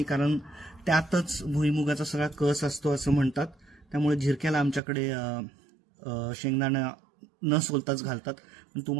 कारण त्यातच भुईमुगाचा सगळा कस असतो असं म्हणतात, त्यामुळे झिरक्याला आमच्याकडे शेंगदाणा न सोलताच घालतात। पण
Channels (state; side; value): drops out; left; at 4.8 s